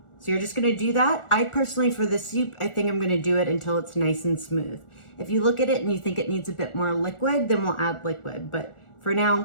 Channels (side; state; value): right; late; 1.4 ms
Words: So you're just gonna do that. I personally, for this soup, I think I'm gonna do it until it's nice and smooth. If you look at it and you think it needs a bit more liquid, then we'll add liquid. But for now,